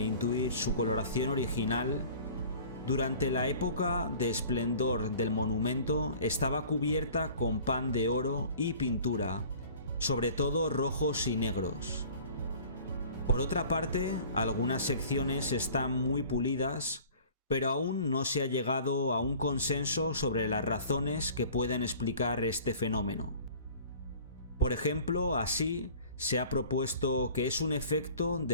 intuir su coloración original, durante la época de esplendor del monumento estaba cubierta con pan de oro y pintura, sobre todo rojos y negros. Por otra parte, algunas secciones están muy pulidas, pero aún no se ha llegado a un consenso sobre las razones que pueden explicar este fenómeno. Por ejemplo, así se ha propuesto que es un efecto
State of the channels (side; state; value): both; inverted; correlation -0.46